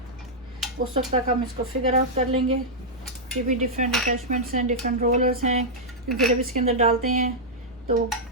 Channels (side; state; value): both; normal; correlation -0.07